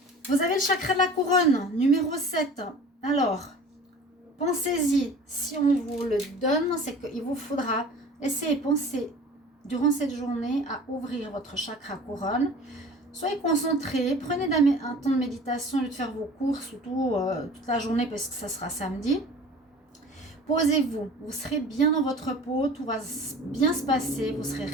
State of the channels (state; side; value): normal; both; correlation 0.43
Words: Vous avez le chakra de la couronne, numéro 7. Alors, pensez-y. Si on vous le donne, c'est qu'il vous faudra essayer de penser durant cette journée à ouvrir votre chakra couronne. Soyez concentrés, prenez un temps de méditation au lieu de faire vos courses toute la journée parce que ça sera samedi. Posez-vous, vous serez bien dans votre peau, tout va bien se passer, vous serez